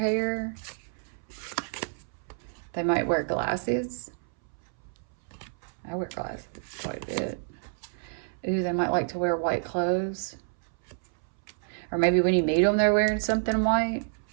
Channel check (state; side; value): silent; left; 59 dB below the other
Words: They might wear glasses. I wear glasses quite a bit. Ooh, they might like to wear white clothes. Or maybe when you meet them, they're wearing something white.